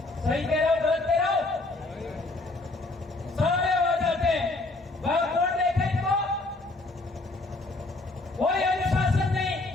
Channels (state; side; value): quieter; right; 3.0 dB